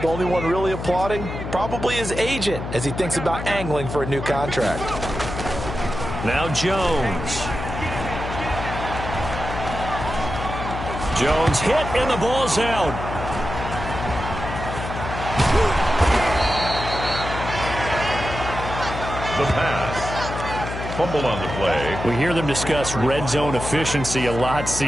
only one really applauding probably his agent as he thinks about angling for a new contract. Now Jones. Jones hit and the ball's out. The pass. Fumble on the play. We hear them discuss red zone efficiency a lot,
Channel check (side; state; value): left; noise; hum, 6 dB below the sound